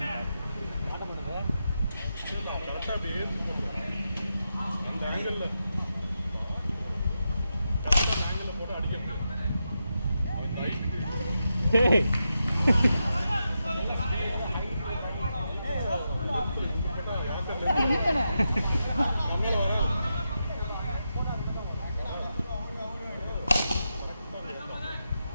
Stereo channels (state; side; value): inverted; both; correlation -0.87